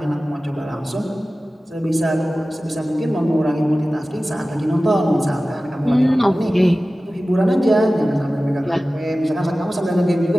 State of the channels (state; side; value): normal; both; correlation 0.96